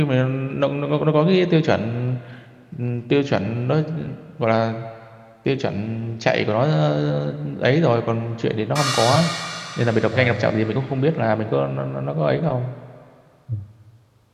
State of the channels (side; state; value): both; identical; correlation 1.00